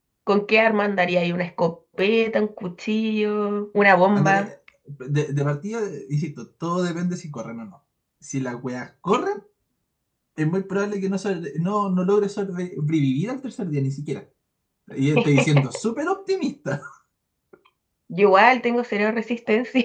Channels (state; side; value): identical; both; correlation 1.00